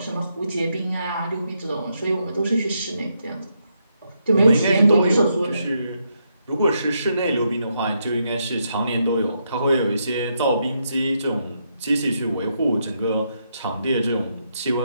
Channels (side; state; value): both; inverted; correlation -0.79